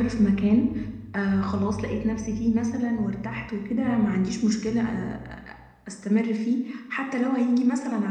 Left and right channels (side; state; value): both; identical; correlation 1.00